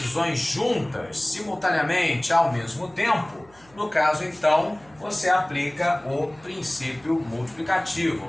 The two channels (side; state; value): right; noise; hum, 28 dB below the sound